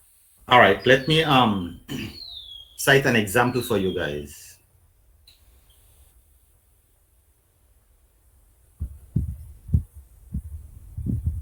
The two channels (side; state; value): both; identical; correlation 1.00